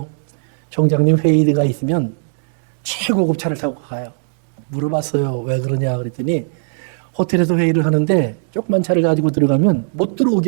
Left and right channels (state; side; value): silent; left; digital silence